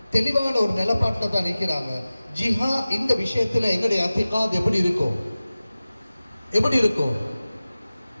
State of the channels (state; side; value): inverted; both; correlation -0.97